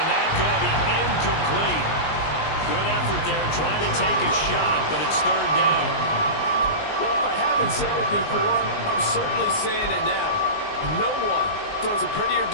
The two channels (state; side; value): late; right; 19 ms